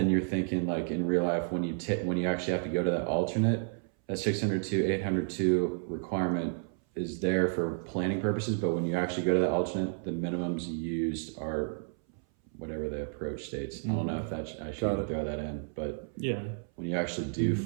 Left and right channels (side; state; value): left; silent; 57 dB below the other